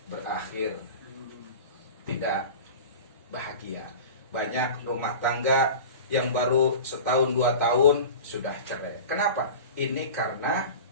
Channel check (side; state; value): both; inverted; correlation -0.35